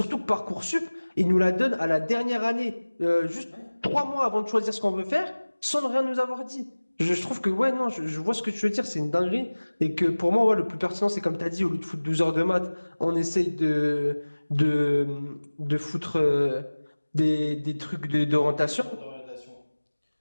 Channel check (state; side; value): inverted; both; correlation -1.00